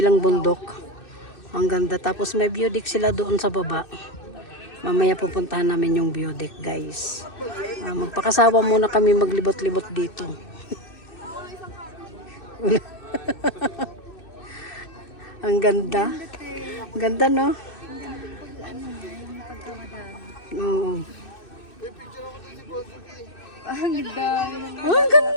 bundok. Ang ganda. Tapos may view deck sila doon sa baba. Mamaya pupuntahan namin yung view deck guys. Magpakasawa muna kami maglibot-libot dito. Ang ganda. Ganda, no? Oo. Ang ganda. Ang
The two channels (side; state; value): right; late; 2.6 ms